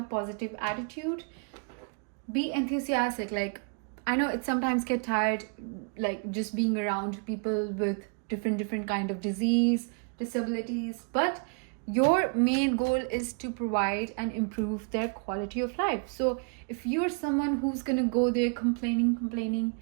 positive attitude, be enthusiastic. Like, I know it sometimes get tired, like just being around people with different kind of disease, disabilities, but your main goal is to provide and improve their quality of life. So if you're someone who's gonna go there complaining,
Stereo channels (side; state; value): left; quieter; 37.2 dB